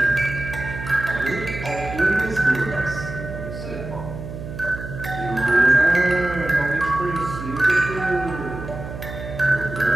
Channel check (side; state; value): right; noise; hum, 10 dB below the sound